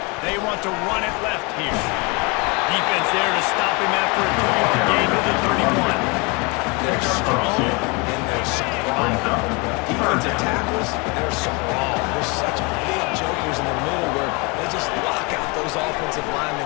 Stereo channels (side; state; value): right; quieter; 29.1 dB